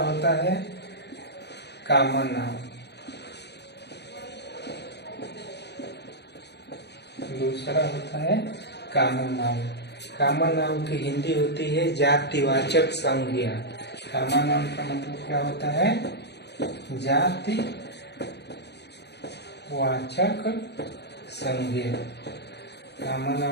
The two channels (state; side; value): late; right; 0.49 ms